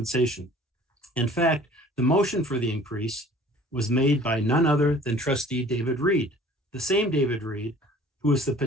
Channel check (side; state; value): both; normal; correlation 0.50